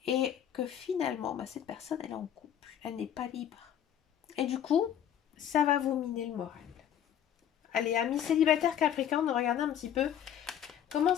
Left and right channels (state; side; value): quieter; right; 9.8 dB